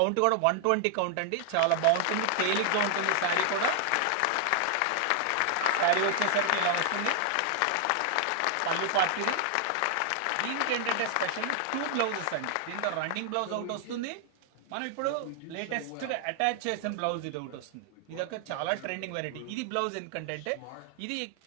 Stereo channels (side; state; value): both; different; correlation 0.00